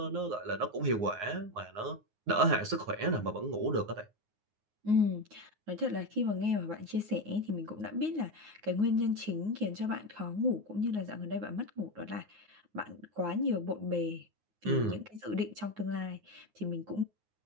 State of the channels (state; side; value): late; left; 9.5 ms